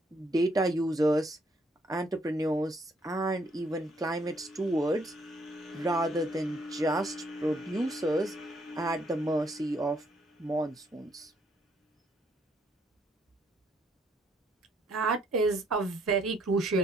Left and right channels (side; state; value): both; normal; correlation 0.70